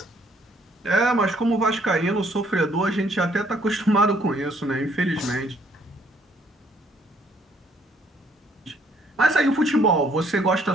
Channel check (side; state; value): both; normal; correlation 0.65